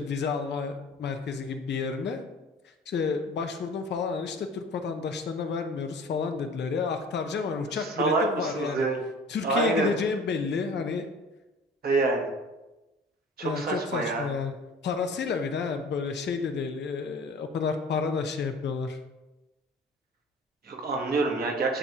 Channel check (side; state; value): both; normal; correlation 0.44